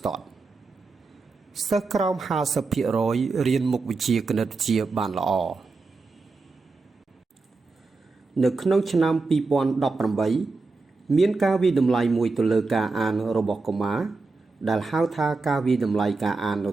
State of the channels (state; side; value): quieter; left; 3.9 dB